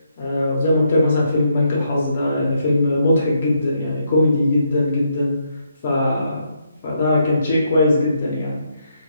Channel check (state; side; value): inverted; both; correlation -0.76